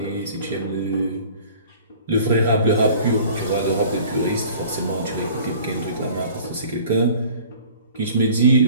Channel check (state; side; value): inverted; both; correlation -0.48